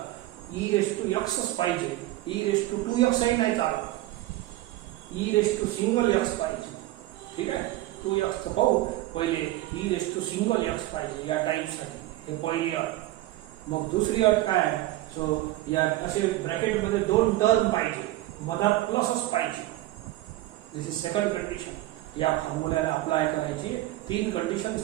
ई रेस टू एक्सच पाहिजे. ई रेस टू 2x नाही चालत, e raise to single x पाहिजे. ठीक आहे, 2x पाहू पहिले. E raise to single x पाहिजे या टाईपसाठी, हे पहिली अट. मग दुसरी अट काय आहे? सो या असे ब्रॅकेटमध्ये 2 टर्म पाहिजे, मधात प्लसच पाहिजे. This is second condition. या फॉर्म्युल्याला अप्लाय करायची 3 कंडिशन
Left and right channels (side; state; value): left; quieter; 16.6 dB